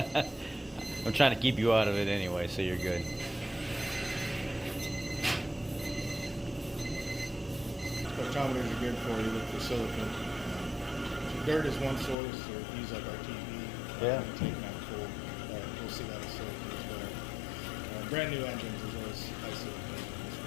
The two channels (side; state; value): right; drops out; at 12.2 s